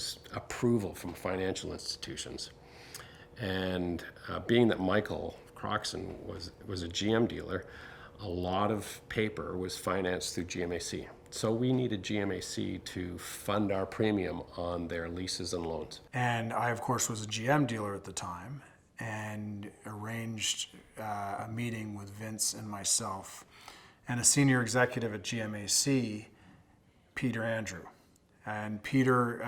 approval from financial institutions. And being that Michael Croxon was a GM dealer, a lot of paper was financed through GMAC. So we needed GMAC to fund our premium on their leases and loans. And I, of course, was a GM dealer at the time and arranged a meeting with Vince and myself and a senior executive at GMAC, Peter Andrew. And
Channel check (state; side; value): identical; both; correlation 1.00